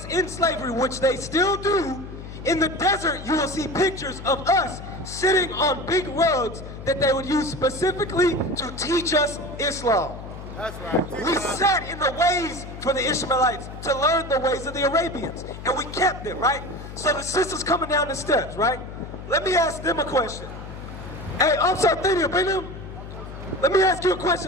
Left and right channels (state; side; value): noise; left; hum, 11 dB below the sound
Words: in slavery, which they still do, in the desert you will see pictures of us sitting on big rugs that they would use specifically to teach us Islam. That's right. We sat in the ways for the Ishmaelites to learn the ways of the Arabians, and we kept it, right? So the sisters coming down the steps, right? Let me ask them a question. Hey, I'm sorry, bring them. Let me ask you a